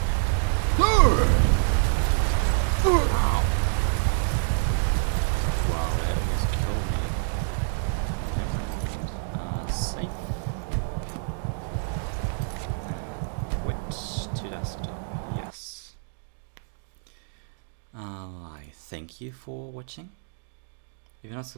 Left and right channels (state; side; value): silent; left; digital silence